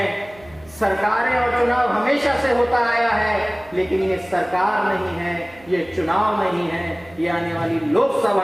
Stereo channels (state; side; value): noise; right; hum, 24 dB below the sound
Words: सरकारें और चुनाव हमेशा से होता आया है, लेकिन ये सरकार नहीं है, ये चुनाव नहीं है, ये आने वाली